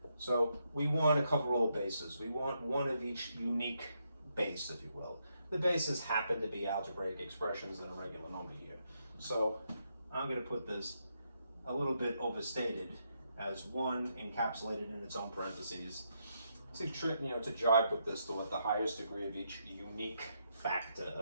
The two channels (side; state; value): both; inverted; correlation -0.79